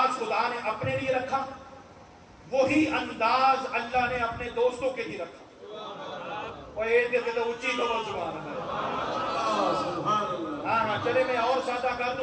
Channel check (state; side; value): identical; both; correlation 1.00